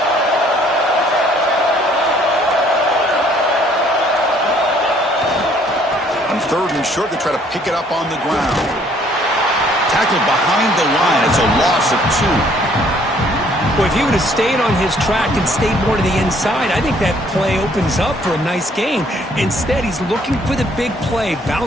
On third and short, they try to pick it up on the ground. Tackled behind the line. It's a loss of 2. Well, if he would have stayed on his track and stayed more to the inside, I think that play opens up for a nice gain. Instead, he's looking for the big play,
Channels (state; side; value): normal; both; correlation 0.62